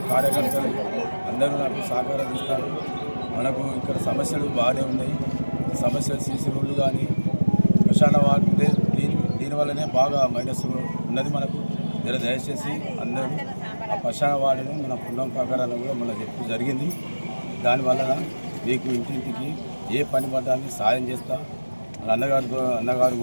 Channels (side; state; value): both; inverted; correlation -1.00